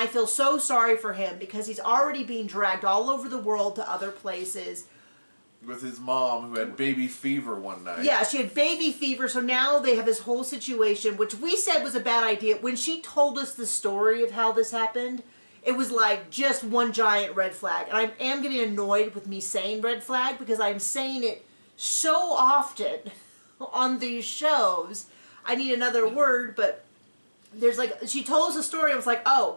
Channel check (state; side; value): inverted; both; correlation -1.00